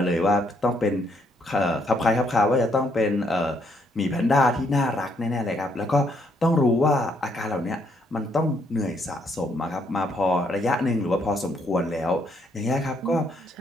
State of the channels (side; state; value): both; normal; correlation 0.72